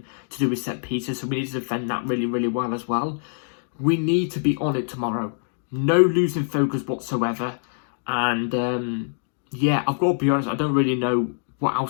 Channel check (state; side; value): silent; right; digital silence